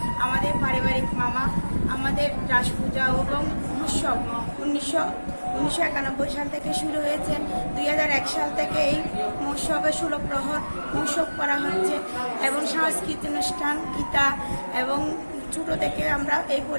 আমাদের পারিবারিক মামা আমাদের রাস পূজা এবং উৎসব 1991 সাল থেকে শুরু হয়েছে। 2001 সাল থেকে এই মহোৎসবে 16 প্রহর মহোৎসব করা হচ্ছে এবং সাংস্কৃতিক অনুষ্ঠান গীতা এবং ছোট থেকে আমরা এই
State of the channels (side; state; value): both; inverted; correlation -1.00